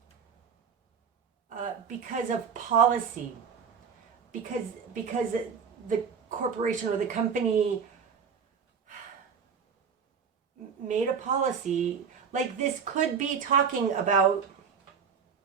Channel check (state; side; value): quieter; left; 6.5 dB